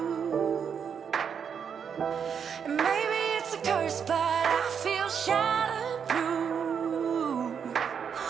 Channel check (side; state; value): left; quieter; 7.2 dB